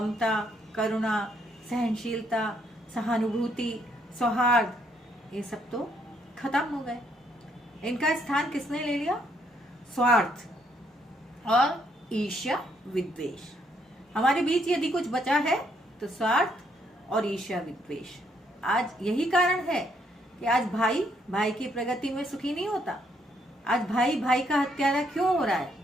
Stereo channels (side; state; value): both; normal; correlation 0.71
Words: करुणा, सहनशीलता, सहानुभूति, सौहार्द, ये सब तो खत्म हो गए। इनका स्थान किसने ले लिया? स्वार्थ और ईर्ष्या विद्वेष। हमारे बीच यदि कुछ बचा है तो स्वार्थ और ईर्ष्या विद्वेष। आज यही कारण है कि आज भाई भाई की प्रगति में सुखी नहीं होता। आज भाई भाई का हत्यारा क्यों हो रहा है?